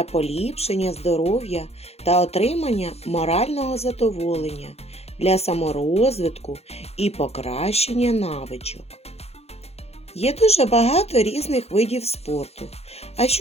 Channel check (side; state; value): right; late; 0.30 ms